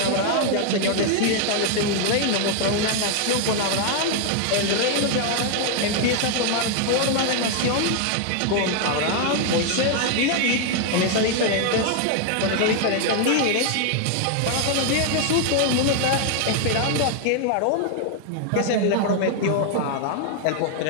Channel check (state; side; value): different; both; correlation 0.00